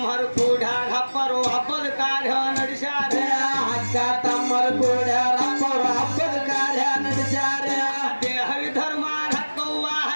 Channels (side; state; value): both; inverted; correlation -1.00